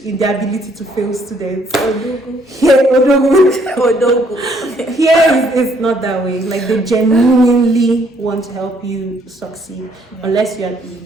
in their ability to fail students. Here it's not that way. Like they genuinely want to help you succeed, unless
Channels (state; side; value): normal; both; correlation 0.67